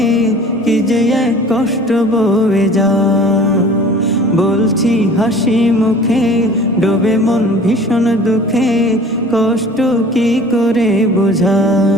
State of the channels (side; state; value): both; normal; correlation 0.46